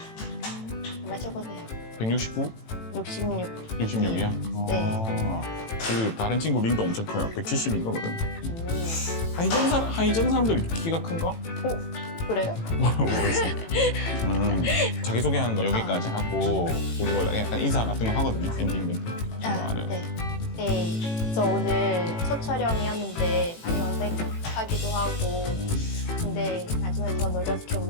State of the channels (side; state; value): right; late; 18 ms